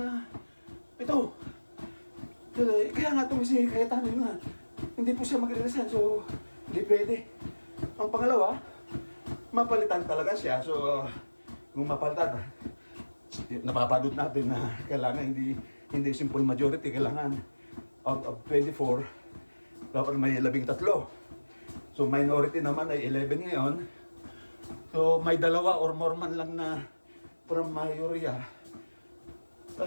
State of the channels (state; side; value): inverted; both; correlation -1.00